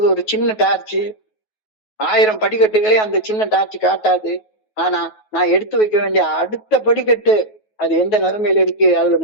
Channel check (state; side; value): late; right; 9.3 ms